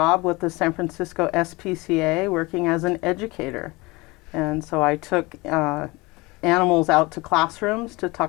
with the San Francisco SPCA working as an educator. And so I took animals out to classrooms to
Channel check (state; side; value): quieter; right; 23.7 dB